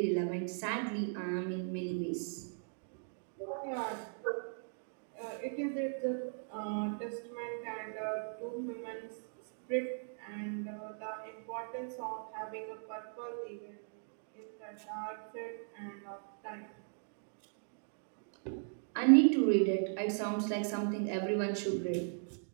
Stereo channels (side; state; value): left; silent; digital silence